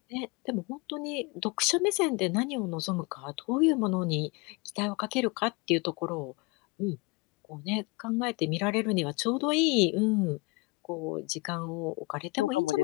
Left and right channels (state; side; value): quieter; right; 25.4 dB